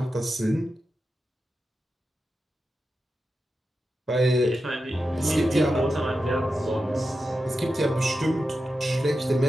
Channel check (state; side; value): normal; both; correlation 0.90